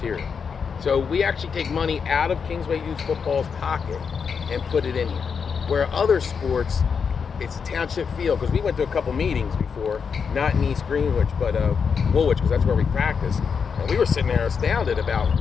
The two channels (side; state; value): right; quieter; 6.2 dB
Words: So we actually take money out of Kingsway Youth Football's pocket and put it in here. Where other sports, it's a township field, because we went to a couple meetings before, not in East Greenwich, but Woolwich, because that's where we practice. And we were sitting there astounded about